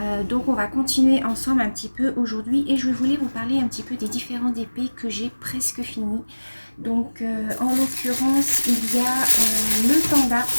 Donc on va continuer ensemble un petit peu aujourd'hui et je voulais vous parler un petit peu des différents épées que j'ai presque fini. Donc en l'occurrence il y a le panda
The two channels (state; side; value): inverted; both; correlation -1.00